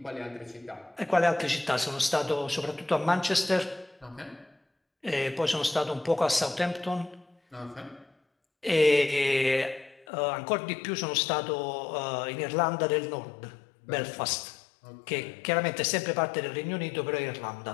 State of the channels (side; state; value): right; drops out; at 10.1 s